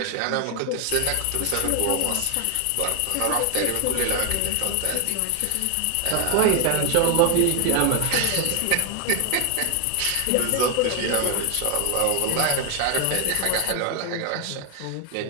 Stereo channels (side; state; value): both; different; correlation 0.00